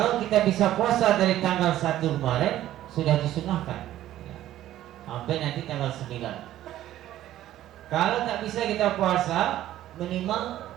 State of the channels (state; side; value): quieter; left; 13.4 dB